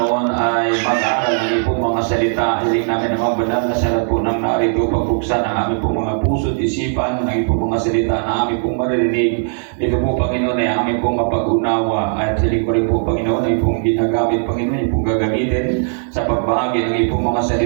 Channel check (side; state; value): left; silent; digital silence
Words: ay mag-aaral ng pong mga salita. Hiling namin ang mga banal na salat po ng narito, pagbuksan ang aming pong mga puso at isipan, ng pong mga salita na aming pong maririnig. Ito po, Panginoon, ay aming pong mapag-unawa. At hiling ko rin po, Panginoon, ay pong ginagamit, Panginoon, yung pong gagamitin sa pagbahagi ng pong mga